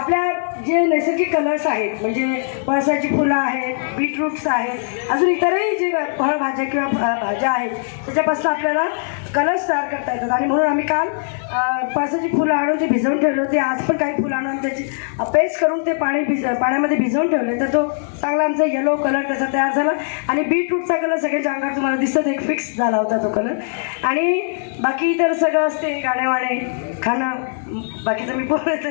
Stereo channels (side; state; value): right; silent; digital silence